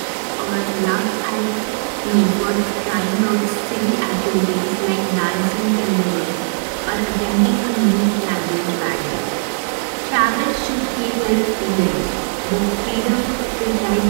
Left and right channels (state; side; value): silent; left; 67 dB below the other